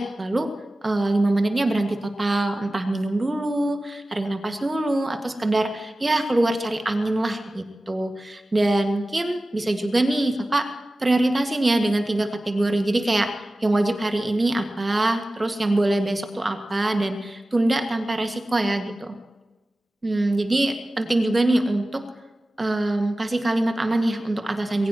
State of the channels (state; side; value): normal; both; correlation 0.96